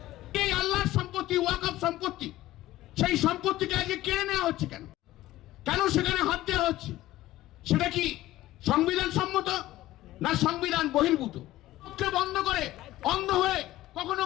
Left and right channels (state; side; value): quieter; right; 15.9 dB